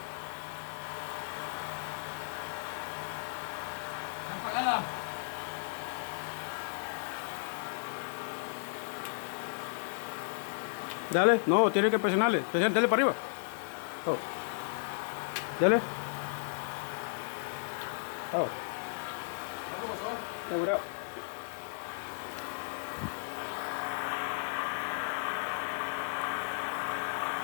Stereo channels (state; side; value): silent; right; digital silence